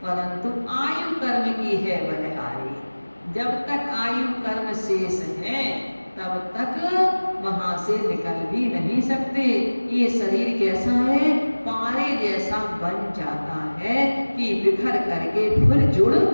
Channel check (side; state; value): both; inverted; correlation -1.00